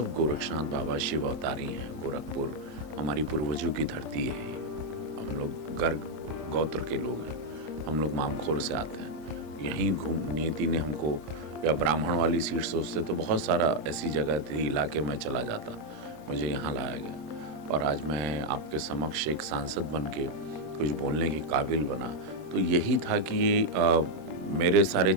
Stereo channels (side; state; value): left; late; 26 ms